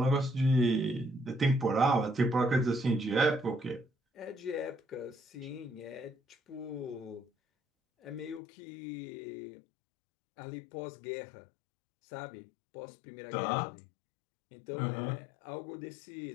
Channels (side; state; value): right; drops out; at 8.4 s